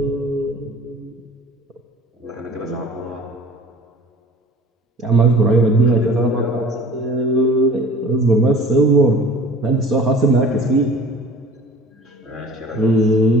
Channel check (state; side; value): normal; both; correlation 0.45